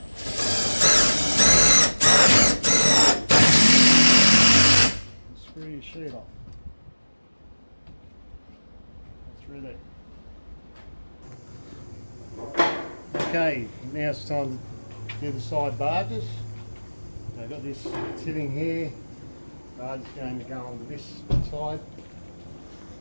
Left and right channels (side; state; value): both; inverted; correlation -1.00